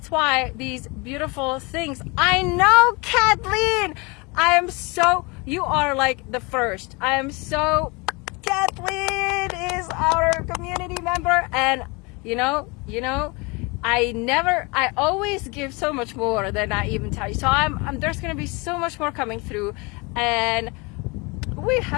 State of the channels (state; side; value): quieter; right; 27.8 dB